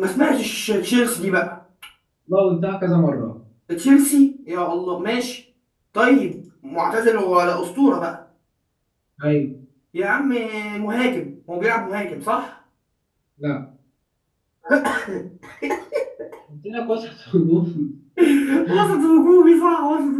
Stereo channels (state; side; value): identical; both; correlation 1.00